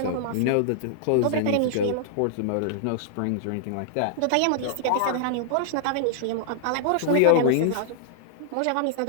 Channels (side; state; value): both; different; correlation -0.01